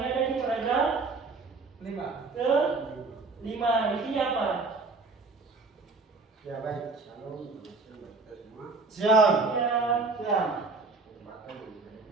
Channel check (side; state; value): left; quieter; 3.9 dB